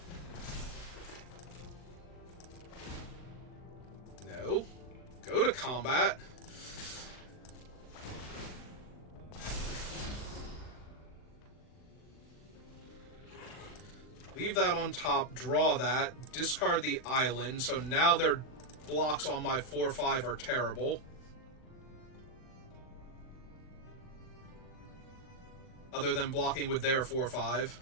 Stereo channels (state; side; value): late; right; 39 ms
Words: No. Go to combat. Leave that on top, draw that, discard the island, so now their blocks on my 4-5 are terrible. Other than blocking with their 4-5.